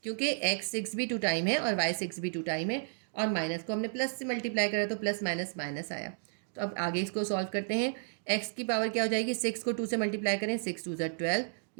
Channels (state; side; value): silent; left; digital silence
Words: क्योंकि x6 भी 2 टाइम है और y6 भी 2 टाइम है और माइनस को हमने प्लस से मल्टीप्लाई करा तो प्लस माइनस माइनस आया। तो अब आगे इसको सॉल्व करते हैं। x की पावर क्या हो जाएगी, 6 को 2 से मल्टीप्लाई करें, 6 2 = 12,